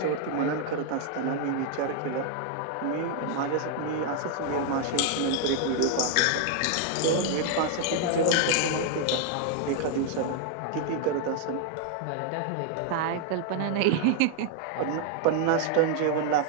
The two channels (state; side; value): different; both; correlation 0.00